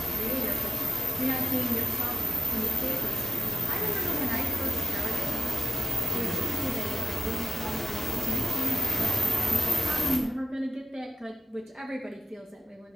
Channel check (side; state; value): both; normal; correlation 0.92